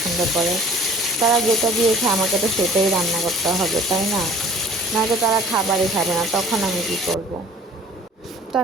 করে। তারা যেটা দিয়ে খায় আমাকে তো সেটাই রান্না করতে হবে, তাই না? নয়তো তারা খাবারই খাবে না, তখন আমি কী করব? তো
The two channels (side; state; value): both; normal; correlation 0.51